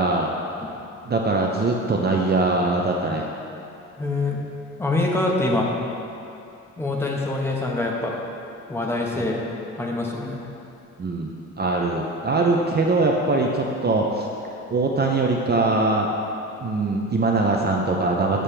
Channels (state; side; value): normal; both; correlation 0.33